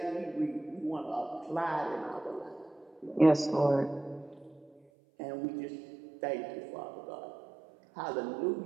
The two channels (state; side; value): drops out; left; at 4.8 s